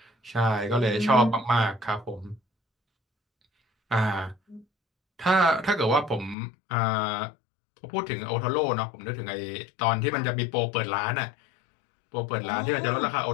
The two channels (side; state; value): right; drops out; at 6.4 s